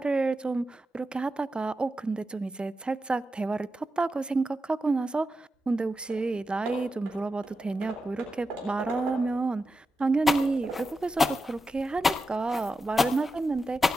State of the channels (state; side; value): normal; both; correlation 0.90